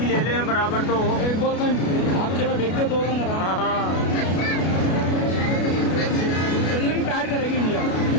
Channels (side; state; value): right; late; 33 ms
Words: ले ले बराबर तो हो। एक बॉल का आप में फेंक दो 2 रन। हाँ, फील्डिंग टाइट करेगी इंडिया,